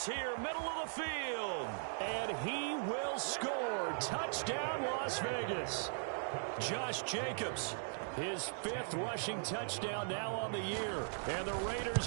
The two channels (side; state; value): left; silent; digital silence